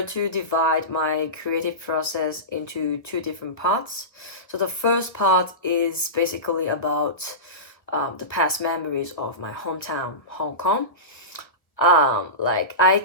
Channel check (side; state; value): right; late; 1.3 ms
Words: to divide my creative process into two different parts. So the first part is basically about the past memories of my hometown, Hong Kong. Like I